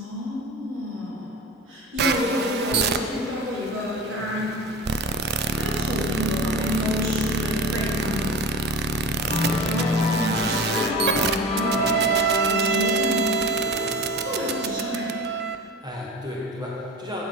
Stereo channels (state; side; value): normal; both; correlation 0.33